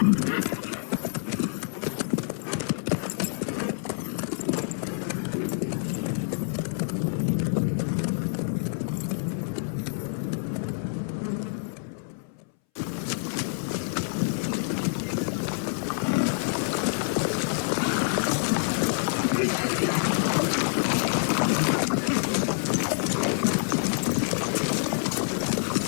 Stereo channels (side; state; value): right; silent; 60 dB below the other